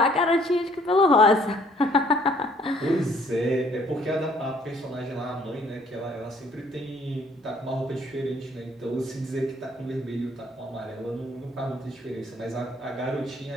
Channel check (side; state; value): both; normal; correlation 0.61